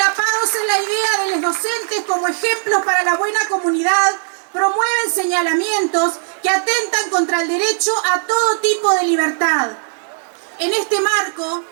en la idea de los docentes como ejemplos para la buena comunidad, promueven señalamientos que atentan contra el derecho a todo tipo de libertad. En este marco,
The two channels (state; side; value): silent; left; 64 dB below the other